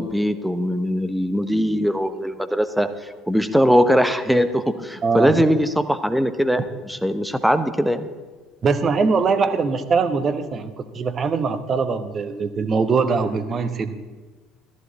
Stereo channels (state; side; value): normal; both; correlation 0.86